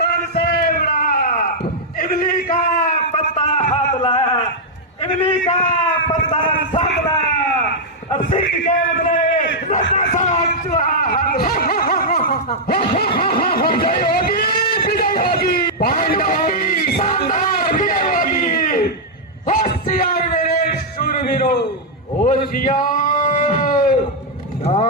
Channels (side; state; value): both; normal; correlation -0.04